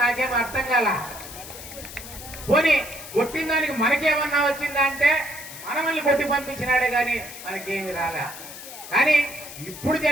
నాకేం అర్థం కాల. పోనీ కొట్టిన దానికి మనకేమన్నా వచ్చిందా అంటే మనల్ని కొట్టి పంపించినాడే కానీ మనకేమి రాలే. కానీ ఇప్పుడు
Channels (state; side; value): noise; left; hiss, 13 dB below the sound